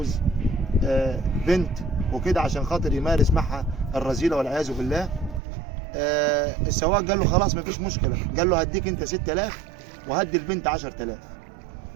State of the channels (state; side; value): drops out; left; at 5.4 s